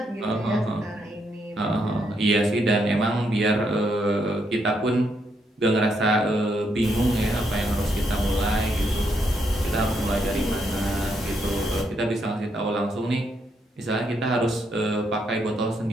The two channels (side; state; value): both; normal; correlation 0.77